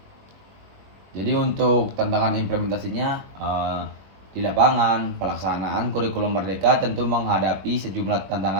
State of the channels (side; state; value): left; late; 21 ms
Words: Jadi untuk tantangan implementasinya, di lapangan, pelaksanaan kurikulum merdeka tentu menghadapi sejumlah